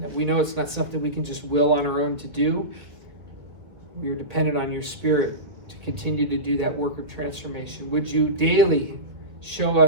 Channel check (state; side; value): late; left; 1.9 ms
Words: We know it's not something we can just will on our own to do. We are dependent on your Spirit to continue to do that work of transformation. Would you daily show